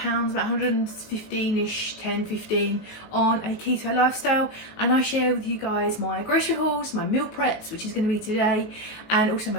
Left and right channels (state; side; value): late; right; 19 ms